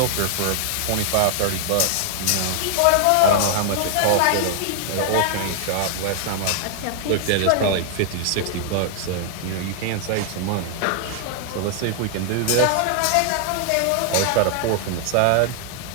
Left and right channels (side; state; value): both; different; correlation 0.00